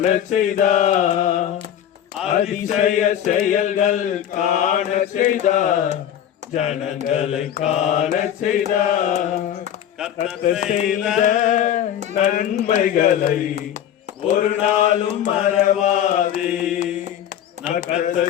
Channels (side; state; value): right; quieter; 10.2 dB